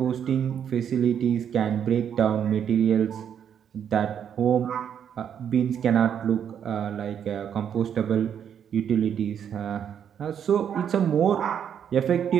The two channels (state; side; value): quieter; left; 8.6 dB